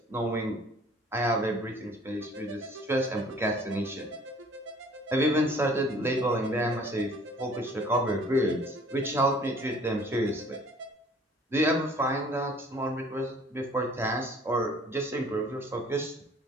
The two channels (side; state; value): both; normal; correlation 0.53